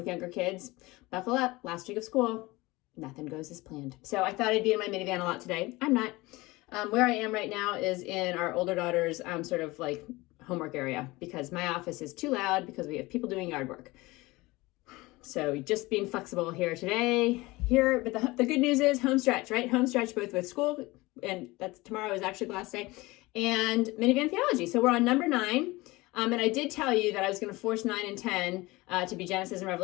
younger kids, buckle up. Last week of school, nothing goes as planned. So I thought I'd be in my minivan a lot today. I'm not. Where I am right now is in our older daughter's sort of like homework area because my office is too loud because we have people doing yard work. So just being flexible here today. But the good news is home stretch, right? Home stretch both with school, and that's tomorrow is actually the last day, and minivan theology. So we're on number 9. And I did tell you that I was going to force 9 and 10 to be Genesis and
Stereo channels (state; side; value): quieter; right; 21.4 dB